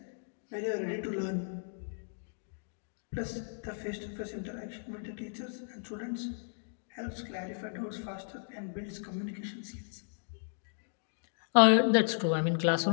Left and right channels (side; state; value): right; silent; digital silence